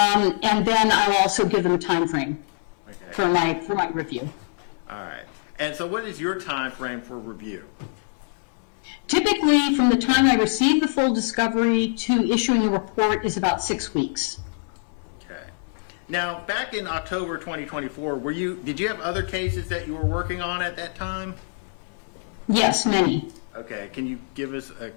then I'll also give them a time frame for my review. All right. And so what is your time frame for review? Typically, from the time I receive the full discovery to issuing a report is about 6 weeks. Okay. Now, back in October 2024, did you have other cases that you were working on at that time? Yes, many. Okay, can you give us a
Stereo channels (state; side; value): silent; right; digital silence